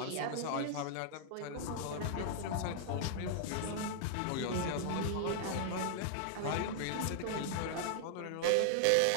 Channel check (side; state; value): both; different; correlation 0.00